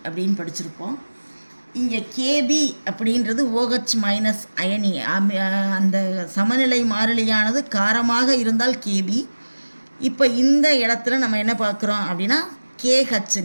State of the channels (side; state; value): both; inverted; correlation -1.00